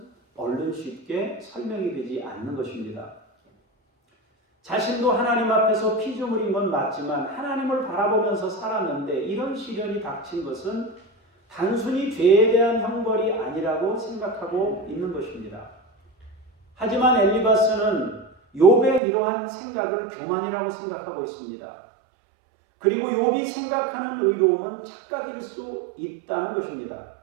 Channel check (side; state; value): left; drops out; at 19.0 s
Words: 얼른 쉽게 설명이 되지 않는 것입니다. 자신도 하나님 앞에서 피조물인 건 맞지만 하나님을 바라보면서 살았는데 이런 시련이 닥친 것은 단순히 죄에 대한 형벌이 아니라고 생각하고 있는 것입니다. 하지만 엘리바스는 욥의 이러한 생각을 교만이라고 생각하고 있습니다. 그리고 욥이 생각하는 의로움은 착각일 수 있다는 것입니다.